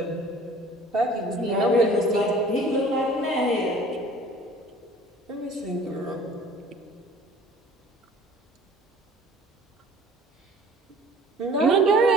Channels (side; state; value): both; normal; correlation 0.48